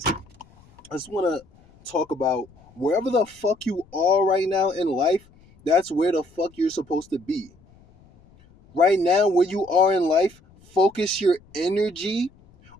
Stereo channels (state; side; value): noise; left; rumble, 28 dB below the sound